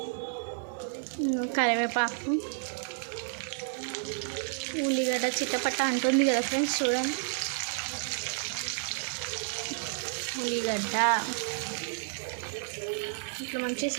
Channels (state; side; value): silent; left; 57 dB below the other